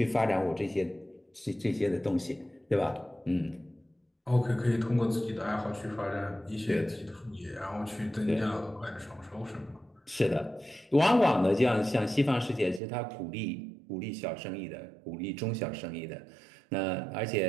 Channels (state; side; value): drops out; left; at 12.8 s